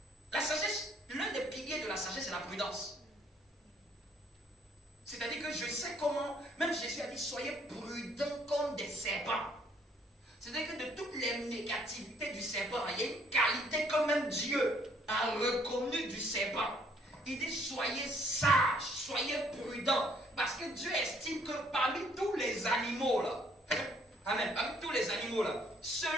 La sagesse, l'un des piliers de la sagesse, c'est la prudence. C'est-à-dire que je sais comment, même Jésus a dit, soyez prudents comme des serpents. C'est-à-dire que de toutes les négativités du serpent, il y a une qualité que même Dieu a reconnue du serpent. Il dit, soyez sages, soyez prudents. Parce que Dieu estime que parmi tous les animaux là, amen, parmi tous les animaux là,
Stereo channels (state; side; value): normal; both; correlation 0.65